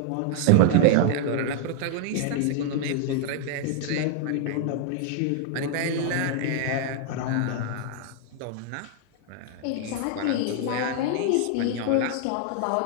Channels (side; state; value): both; different; correlation 0.00